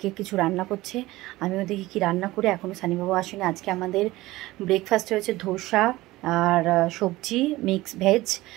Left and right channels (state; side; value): quieter; left; 18.5 dB